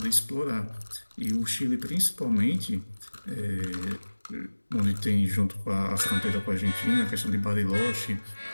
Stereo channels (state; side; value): inverted; both; correlation -1.00